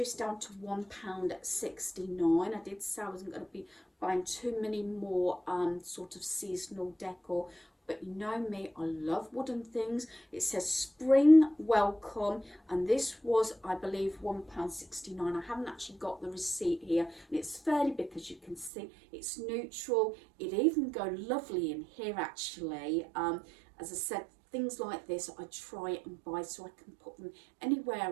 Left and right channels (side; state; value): left; drops out; at 18.7 s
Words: down to £1.69. I did say I wasn't going to be buying too many more sort of seasonal decor but you know me, I love wooden things. It says spring welcome, and this was, I believe, £1.69. I haven't actually got the receipt here, and it's fairly big, as you can see. It's neutral. It even go lovely in here, actually. As I said, things like this I try and buy so I can put them